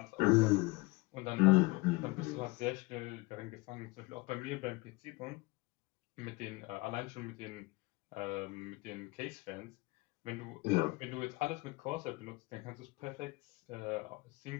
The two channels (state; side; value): quieter; right; 23.5 dB